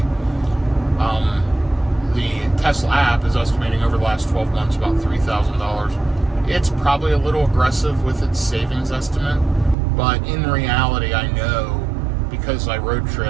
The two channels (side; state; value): left; drops out; at 9.8 s